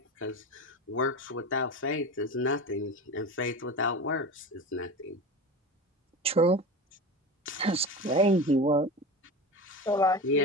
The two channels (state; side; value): normal; both; correlation 0.28